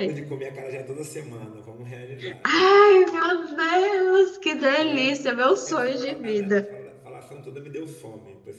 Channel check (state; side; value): identical; both; correlation 1.00